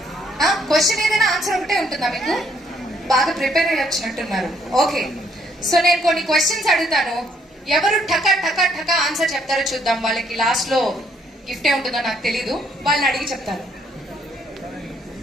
క్వశ్చన్ ఏదైనా ఆన్సర్ ఒకటే ఉంటుందా మీకు? బాగా ప్రిపేర్ అయ్యి వచ్చినట్టున్నారు. ఓకే, సో నేను కొన్ని క్వశ్చన్స్ అడుగుతాను, ఎవరు టకా టకా టకా ఆన్సర్ చెప్తారో చూద్దాం. వాళ్ళకి లాస్ట్ లో గిఫ్ట్ ఏ ఉంటుందో నాకు తెలీదు, వాళ్ళని అడిగి చెప్తాను.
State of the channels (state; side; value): normal; both; correlation 0.68